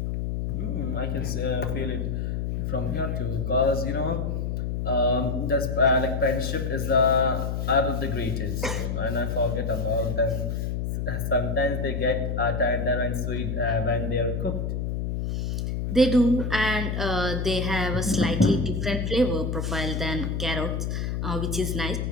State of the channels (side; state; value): left; noise; hum, 1 dB below the sound